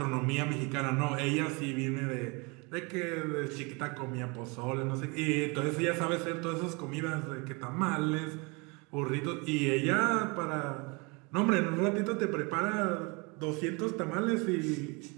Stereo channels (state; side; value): quieter; left; 29.4 dB